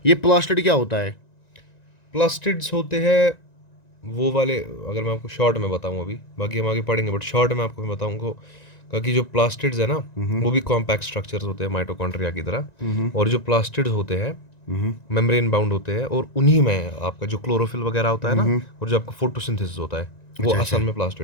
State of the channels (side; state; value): right; late; 1.9 ms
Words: ये प्लास्टिड क्या होता है? प्लास्टिड्स होते हैं वो वाले, अगर मैं आपको शॉर्ट में बताऊं, अभी बाकी हम आगे पढ़ेंगे, बट शॉर्ट में आपको मैं बताऊंगा कि जो प्लास्टिड्स है ना, वो भी कॉम्पैक्ट स्ट्रक्चर्स होते हैं माइटोकॉन्ड्रिया की तरह. और जो प्लास्टिड्स होते हैं मेम्ब्रेन बाउंड होते हैं, और उन्हीं में आपका जो क्लोरोफिल वगैरह होता है ना, और जो आपका फोटोसिंथेसिस होता है, वो असल में